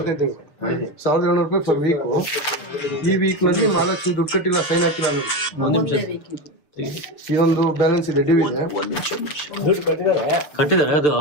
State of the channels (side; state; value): right; late; 6.8 ms